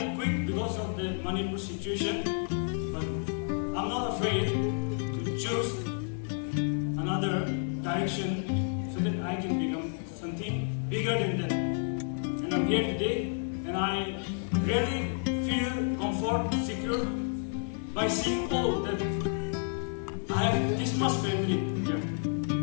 quit because of the Manipur situation, but I'm not afraid to choose another direction so that I can become something bigger than that. And I'm here today, and I really feel comfort, secure by seeing all that I have this much family here,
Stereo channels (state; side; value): silent; right; 57 dB below the other